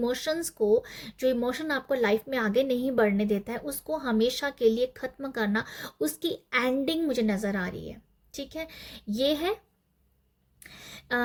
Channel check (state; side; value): identical; both; correlation 1.00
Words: को, जो इमोशन आपको लाइफ में आगे नहीं बढ़ने देता है, उसको हमेशा के लिए ख़त्म करना, उसकी एंडिंग मुझे नज़र आ रही है। ठीक है, ये है